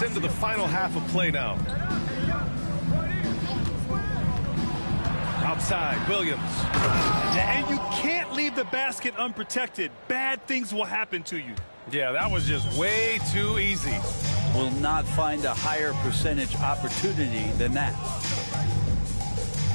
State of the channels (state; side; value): inverted; both; correlation -1.00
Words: into the final half of play now. Outside, Williams. And you can't leave the basket unprotected. Bad things will happen to you. Yeah, that was just way too easy. Will not find a higher percentage opportunity than that.